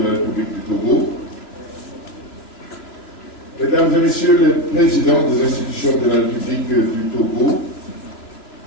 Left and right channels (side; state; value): right; late; 2.9 ms